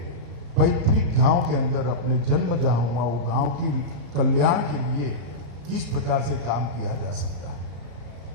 पैतृक गांव के अंदर, अपने जन्म जहां हुआ वो गांव की कल्याण के लिए किस प्रकार से काम किया जा सकता है।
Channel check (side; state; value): left; late; 34 ms